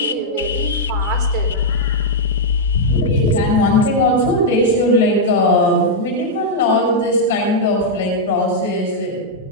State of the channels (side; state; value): both; normal; correlation -0.05